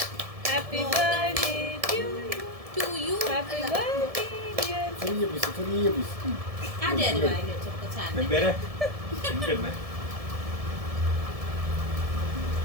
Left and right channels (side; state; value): left; late; 1.7 ms